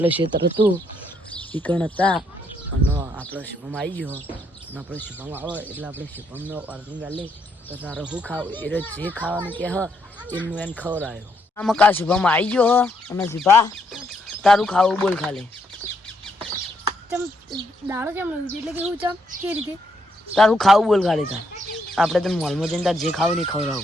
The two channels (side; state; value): both; normal; correlation 0.74